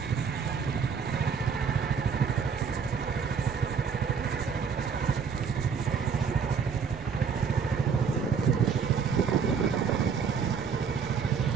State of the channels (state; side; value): quieter; left; 6.4 dB